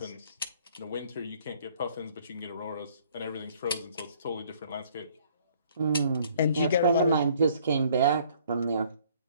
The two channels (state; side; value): inverted; both; correlation -0.59